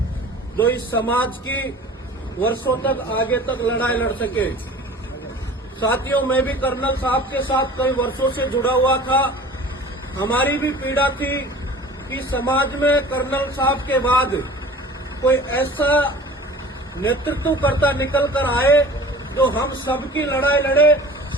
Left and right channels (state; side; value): normal; both; correlation 0.43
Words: जो इस समाज की वर्षों तक आगे तक लड़ाई लड़ सके। साथियों, मैं भी कर्नल साहब के साथ कई वर्षों से जुड़ा हुआ था। हमारी भी पीड़ा थी कि समाज में कर्नल साहब के बाद कोई ऐसा नेतृत्वकर्ता निकल कर आए जो हम सबकी लड़ाई लड़े,